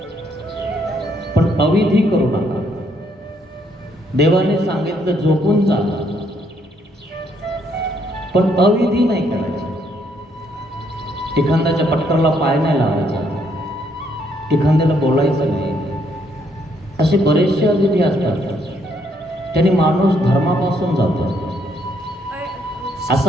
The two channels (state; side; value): normal; both; correlation 0.71